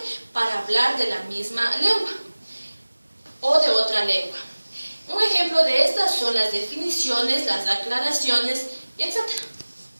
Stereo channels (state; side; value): inverted; both; correlation -1.00